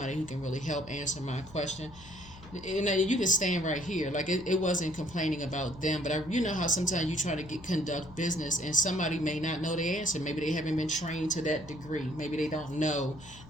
who can really help answer my question? And you can stand right here. Like it wasn't complaining about them, but you know how sometimes you try to conduct business and somebody may not know the answer. Maybe they haven't been trained to that degree. Maybe they don't know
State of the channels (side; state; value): left; noise; hum, 19 dB below the sound